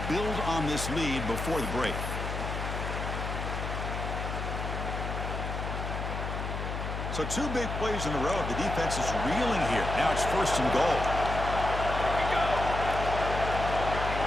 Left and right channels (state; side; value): noise; left; hum, 4 dB below the sound